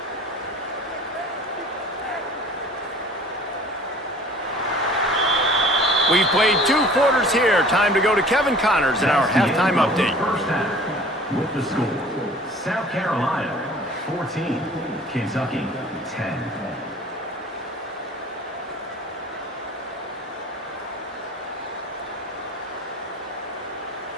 We've played 2 quarters here. Time to go to Kevin Connors in our halftime update. First half, with the score, South Carolina 14, Kentucky 10.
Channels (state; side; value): normal; both; correlation 0.47